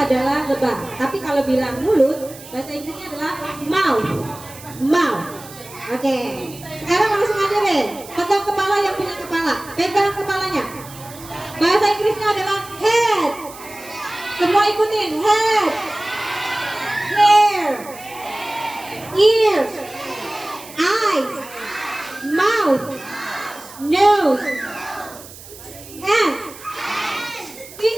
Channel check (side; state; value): right; noise; hiss, 17 dB below the sound